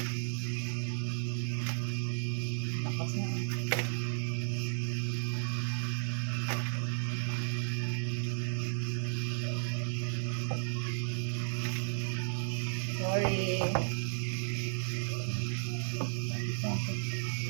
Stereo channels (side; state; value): left; silent; digital silence